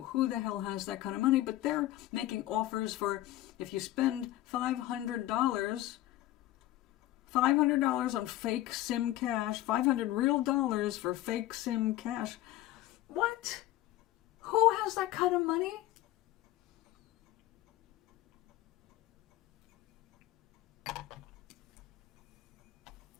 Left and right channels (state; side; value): quieter; right; 15.5 dB